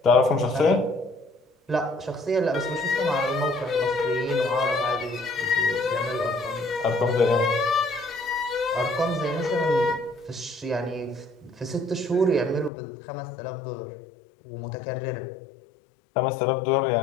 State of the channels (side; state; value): right; drops out; at 12.7 s